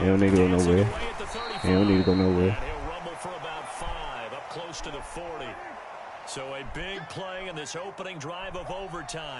don't need to go Dancing nowhere. away at the 35. He don't need to go nowhere. And he'll rumble for about 5, up close to the 40. So a big play in this opening drive of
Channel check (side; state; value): both; identical; correlation 1.00